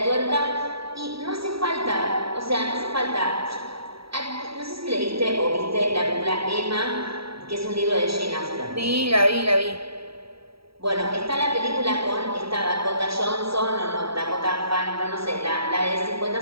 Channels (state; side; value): late; left; 0.76 ms